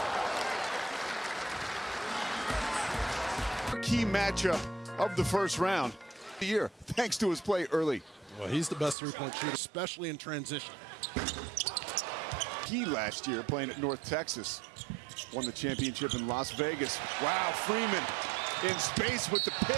Key matchup of the first round of the year, thanks to his play early. Well, he's the best three-point shooter, especially in transition. He last year playing at North Texas, won the championship in Las Vegas. Wow, Freeman in space with the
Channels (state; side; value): drops out; left; at 9.0 s